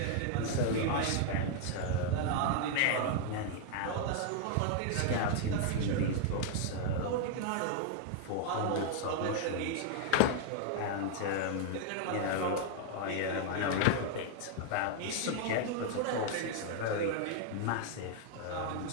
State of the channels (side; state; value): both; different; correlation 0.00